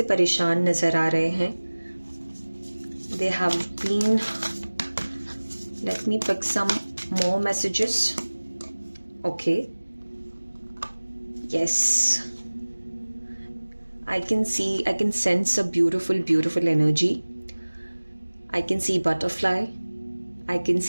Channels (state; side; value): inverted; both; correlation -1.00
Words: परेशान नजर आ रहे हैं. They have been, let me pick some more messages. Okay, yes, I can sense a beautiful energy. I can see butterfly. I can